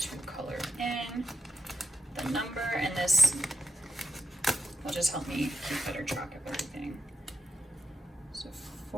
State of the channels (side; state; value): both; normal; correlation 0.87